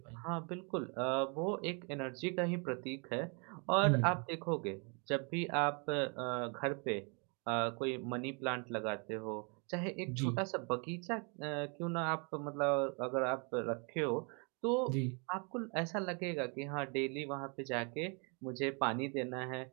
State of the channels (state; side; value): quieter; left; 34.8 dB